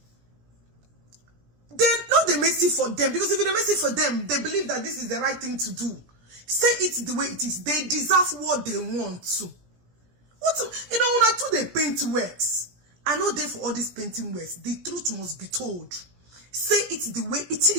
They're not the mercy for them. Because if it's the mercy for them, they believe that this is the right thing to do. Say it the way it is. They deserve what they want to. You know, when I do the paint works, I know they for all these painting works. The truth must be told. Say it the way it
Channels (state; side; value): late; left; 17 ms